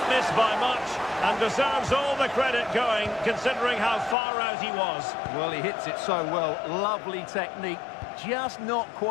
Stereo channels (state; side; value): drops out; right; at 4.2 s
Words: miss by much and deserves all the credit going, considering how far out he was. Well, he hits it so well. Lovely technique, just not